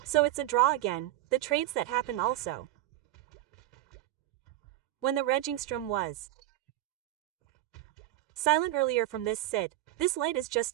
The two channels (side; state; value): left; quieter; 15.1 dB